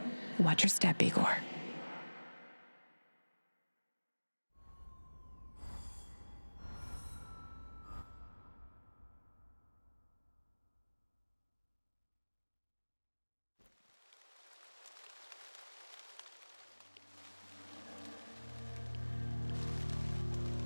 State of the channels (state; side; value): inverted; both; correlation -1.00